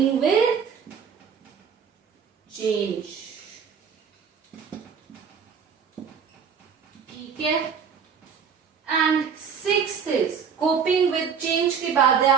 with change. ठीक है, and sixth is coping with change के बाद है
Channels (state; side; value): quieter; left; 6.8 dB